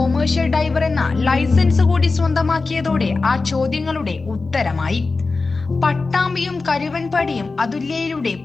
ഡൈവർ എന്ന ലൈസൻസ് കൂടി സ്വന്തമാക്കിയതോടെ ആ ചോദ്യങ്ങളുടെ ഉത്തരമായി. പട്ടാമ്പിയും കരുവൻപടിയും അതുല്യയിലൂടെ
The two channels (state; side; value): quieter; right; 3.9 dB